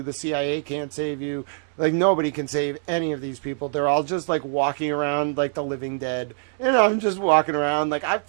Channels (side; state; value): left; silent; 63 dB below the other